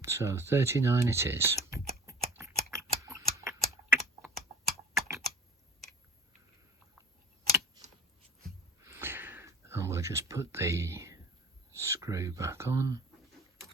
so 39 it is. And we'll just put the screw back on.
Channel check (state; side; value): normal; both; correlation 0.43